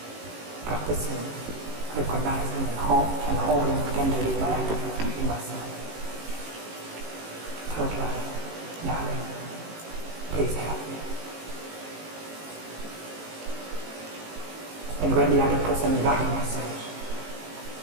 practicing, recognizing and holding tenderly my anger in myself. Third line, darling, please help me. And when the other person got the message,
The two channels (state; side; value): late; left; 18 ms